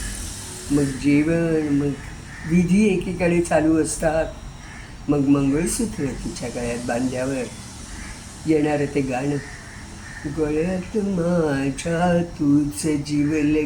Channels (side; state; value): both; identical; correlation 1.00